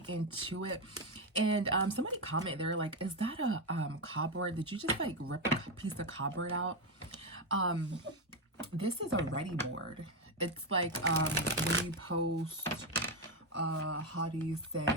into it. And somebody comment there, like, is that a cardboard? Did you just like rip a piece of cardboard out? This is a ready board. It's like when you post how do you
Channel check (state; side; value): normal; both; correlation 0.08